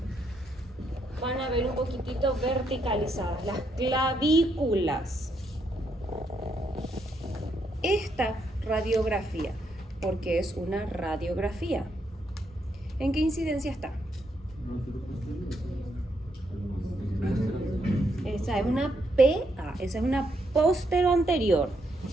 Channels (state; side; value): normal; both; correlation 0.77